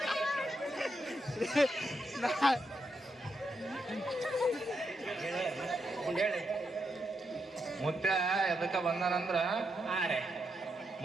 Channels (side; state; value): both; normal; correlation 0.82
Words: ಹೇಳಿ ಮುತ್ಯ ಎದಕ್ಕ ಬಂದಾನಂದ್ರ ಹಾ ರೀ